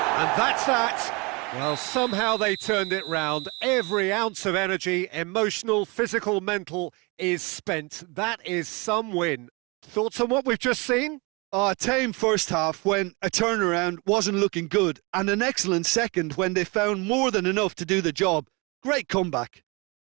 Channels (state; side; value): quieter; left; 28.0 dB